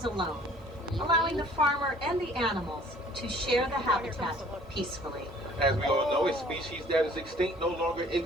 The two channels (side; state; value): both; normal; correlation 0.54